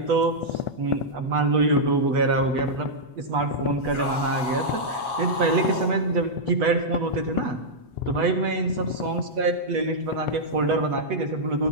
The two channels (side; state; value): left; late; 8.1 ms